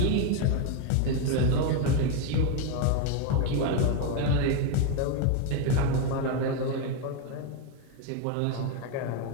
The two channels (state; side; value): different; both; correlation 0.02